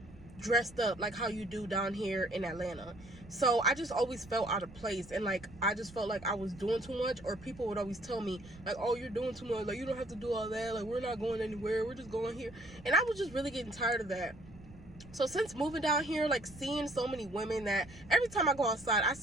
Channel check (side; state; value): right; noise; rumble, 19 dB below the sound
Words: dressed up like how you do down here in Atlanta. So I just always felt out of place, and like I just felt like I was doing too much, or people would always tell me like, oh, you're doing too much, like you don't have to do all that, like we're not going anywhere, we're just going here. And I was just really getting tired of that. So since moving down here, like seeing so many women, that every time I go outside I